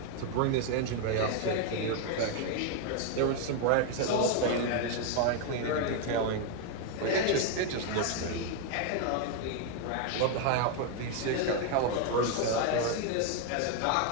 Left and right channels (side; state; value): both; different; correlation 0.01